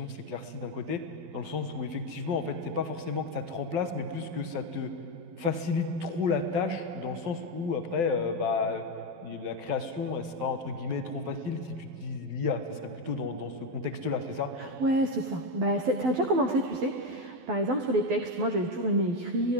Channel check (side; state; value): left; late; 12 ms